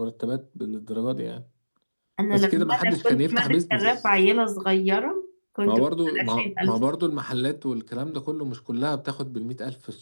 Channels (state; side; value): inverted; both; correlation -1.00